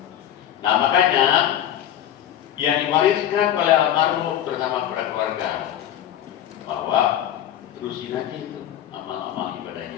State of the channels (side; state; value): right; quieter; 11.1 dB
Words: Nah makanya yang diwariskan oleh almarhum bersama para keluarga bahwa terusin aja itu amal-amal